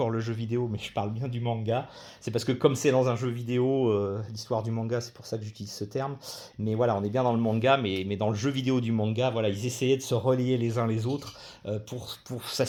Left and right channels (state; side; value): identical; both; correlation 1.00